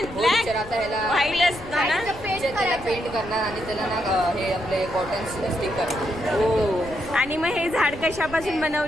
हो ब्लॅक टीचर, आता ह्याला व्हाईट असतं ना? टीचर त्याला पेंट करणार आणि त्याला ना हे आपले कॉटन स्टिक करणार. हो. आणि मग हे झाड कशापासून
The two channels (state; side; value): noise; left; rumble, 15 dB below the sound